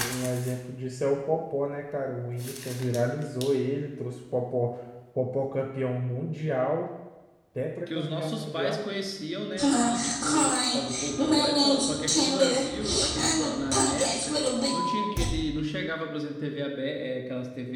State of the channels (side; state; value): both; identical; correlation 1.00